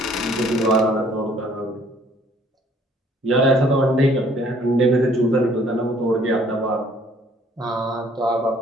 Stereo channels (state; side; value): normal; both; correlation 0.59